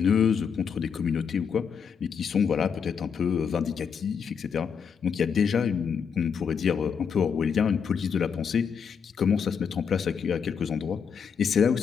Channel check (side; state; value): right; quieter; 6.7 dB